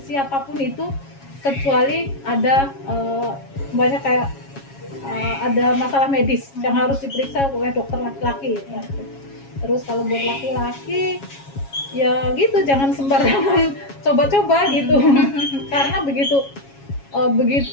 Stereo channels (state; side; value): late; right; 7.3 ms